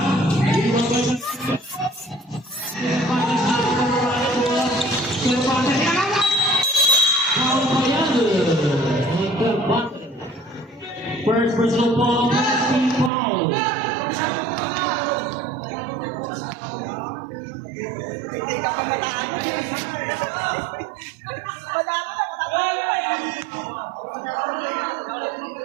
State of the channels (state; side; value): drops out; left; at 13.1 s